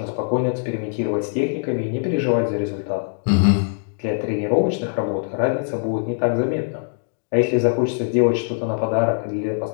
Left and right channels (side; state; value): right; silent; digital silence